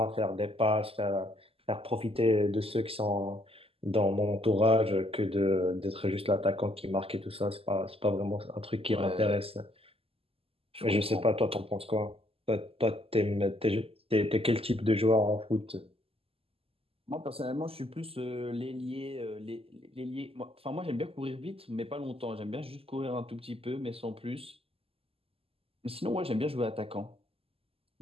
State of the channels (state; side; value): late; left; 0.28 ms